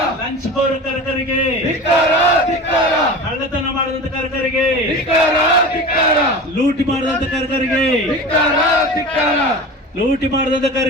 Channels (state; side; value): normal; both; correlation 0.33